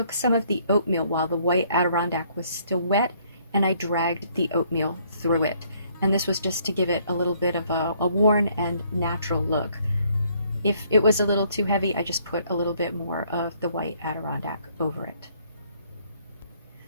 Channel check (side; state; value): both; inverted; correlation -0.66